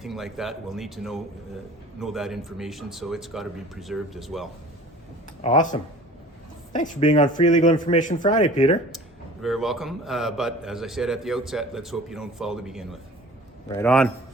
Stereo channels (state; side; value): normal; both; correlation 0.45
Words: like that. We'll need to know that information, so it's got to be preserved as well. Awesome. Thanks for being on Free Legal Information Friday, Peter. You're very welcome, but as I said at the outset, let's hope you don't fall to begin with. Right on.